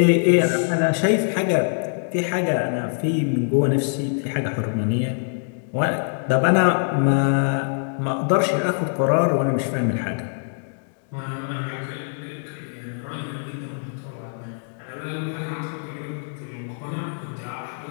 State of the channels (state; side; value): silent; right; digital silence